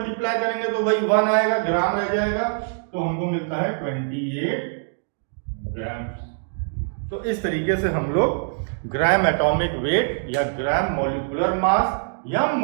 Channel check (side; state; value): left; silent; digital silence